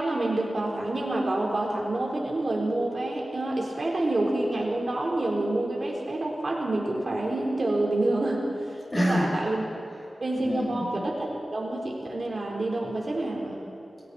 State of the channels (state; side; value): normal; both; correlation 0.95